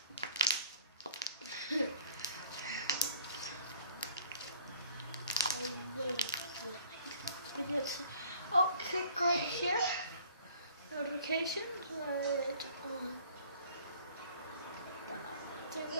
Oh, click right here. Notifications right on.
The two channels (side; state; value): both; inverted; correlation -0.54